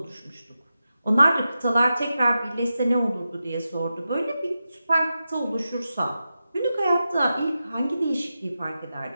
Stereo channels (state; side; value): inverted; both; correlation -0.91